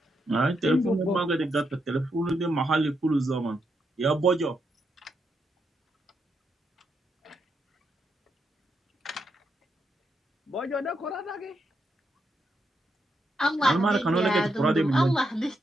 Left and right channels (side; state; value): both; normal; correlation 0.81